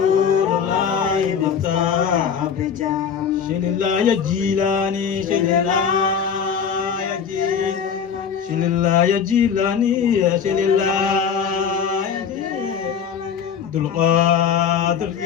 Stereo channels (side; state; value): right; quieter; 7.2 dB